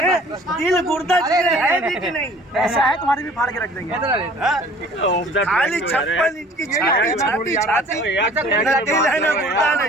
दिल गुर्दा है भी कि नहीं? ऐसा है, तुम्हारी भी फाड़ के रख देंगे। खाली 56 इंच की छाती, न दिल है, न गुर्दा,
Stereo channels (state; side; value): normal; both; correlation 0.50